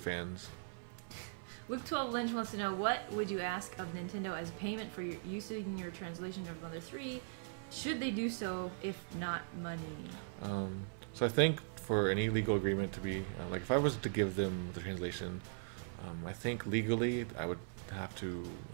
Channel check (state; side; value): silent; left; 51 dB below the other